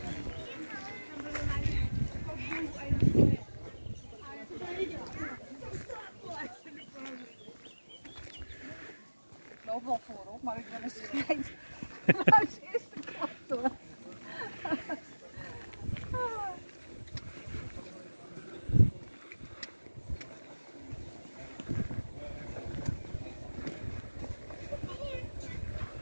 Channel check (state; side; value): inverted; both; correlation -1.00